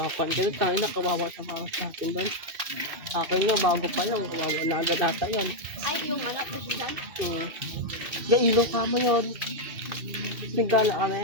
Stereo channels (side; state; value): left; late; 2.7 ms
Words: Ganun tayo na kawawa sa para sa atin doon. Akin nga, bago pa lang. Kawawa na agad ata yun. Ay, yung anak ko dyan. Ilaw ka mo yun. Nagala kami.